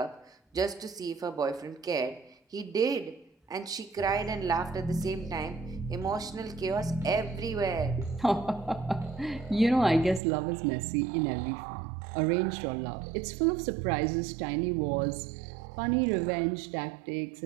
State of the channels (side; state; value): left; drops out; at 10.2 s